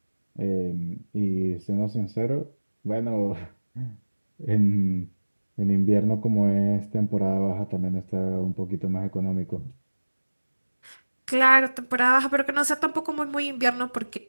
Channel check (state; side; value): inverted; both; correlation -1.00